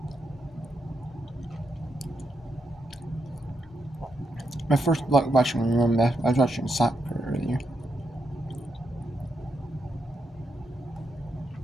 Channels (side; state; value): both; normal; correlation 0.82